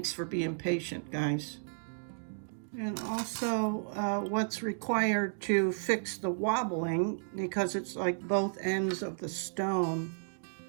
for being patient, guys. And also what's required to fix the wobbling, because it's like both ends of the stone.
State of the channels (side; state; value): left; silent; digital silence